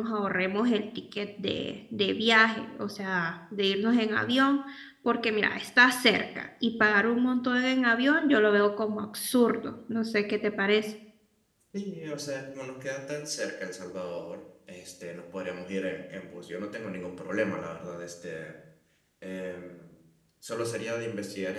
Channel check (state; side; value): identical; both; correlation 1.00